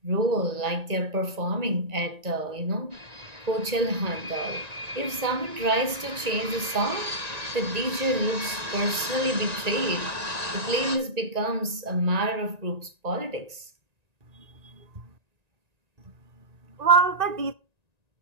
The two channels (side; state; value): left; late; 1.9 ms